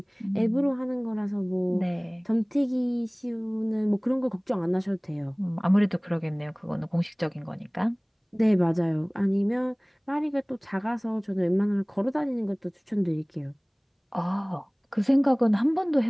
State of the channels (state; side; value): identical; both; correlation 1.00